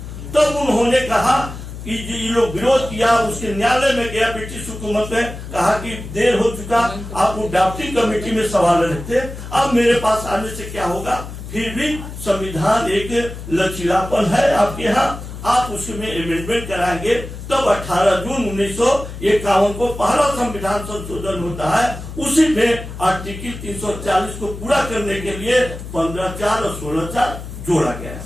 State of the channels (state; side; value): noise; left; hum, 11 dB below the sound